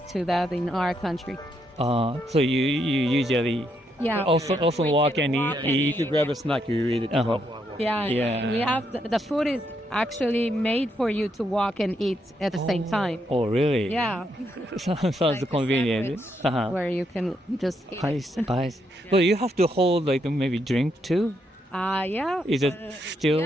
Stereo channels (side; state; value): both; normal; correlation 0.78